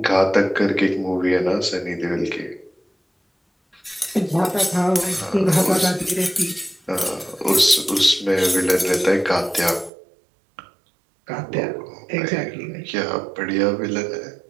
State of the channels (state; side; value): drops out; left; at 9.9 s